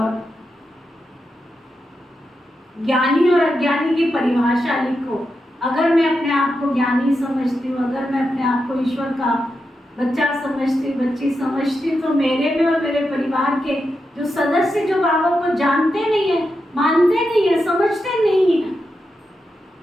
ज्ञानी और अज्ञानी की परिभाषा लिखो। अगर मैं अपने आप को ज्ञानी समझती हूँ, अगर मैं अपने आप को ईश्वर का बच्चा समझती, बच्ची समझती, तो मेरे में और मेरे परिवार के जो सदस्य जो बाबा को जानते नहीं है, मानते नहीं है, समझते नहीं है,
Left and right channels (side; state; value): both; normal; correlation 0.87